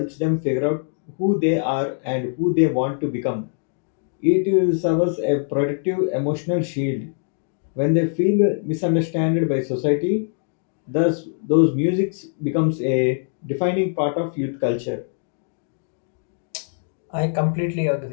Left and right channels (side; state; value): right; silent; digital silence